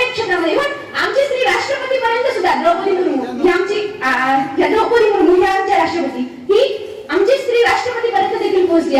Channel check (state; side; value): identical; both; correlation 1.00